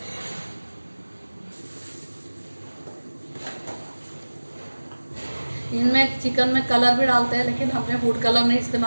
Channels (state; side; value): inverted; both; correlation -1.00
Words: इनमें चिकन में कलर भी डालते हैं, लेकिन हमने फूड कलर नहीं